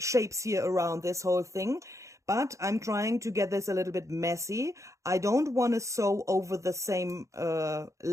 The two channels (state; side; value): late; left; 0.15 ms